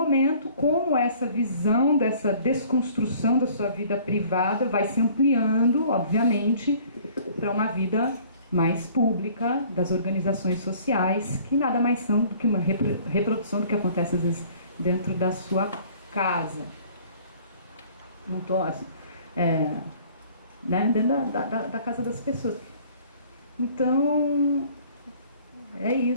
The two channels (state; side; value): inverted; both; correlation -0.53